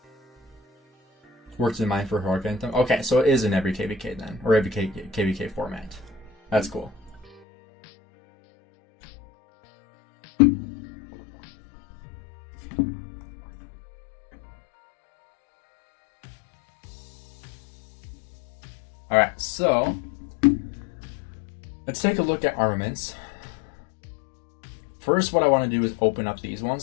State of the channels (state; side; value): drops out; right; at 7.4 s